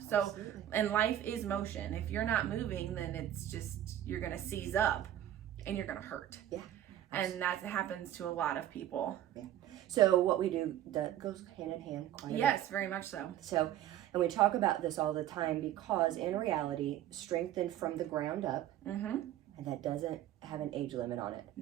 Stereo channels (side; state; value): left; quieter; 12.2 dB